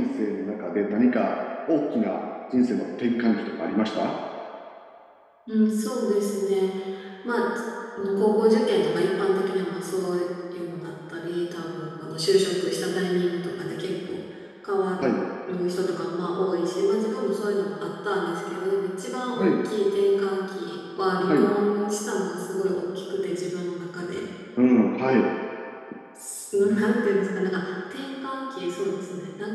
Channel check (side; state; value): both; identical; correlation 1.00